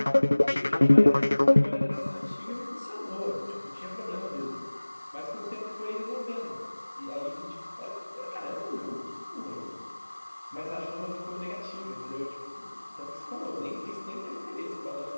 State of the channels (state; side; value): inverted; both; correlation -1.00